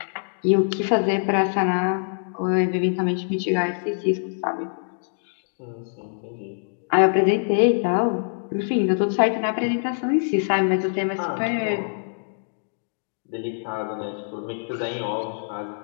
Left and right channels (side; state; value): right; silent; digital silence